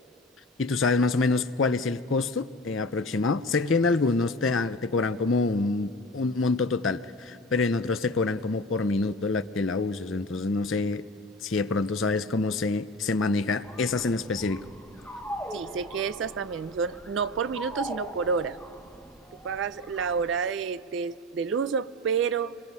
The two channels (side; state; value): both; normal; correlation 0.34